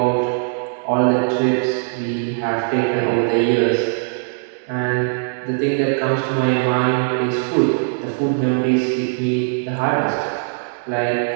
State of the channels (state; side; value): silent; left; digital silence